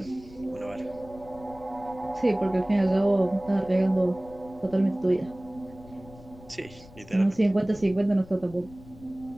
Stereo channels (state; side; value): noise; left; rumble, 20 dB below the sound